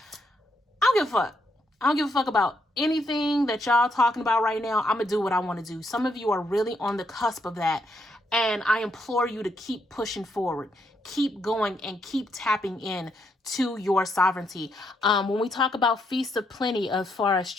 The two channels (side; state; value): both; normal; correlation 0.77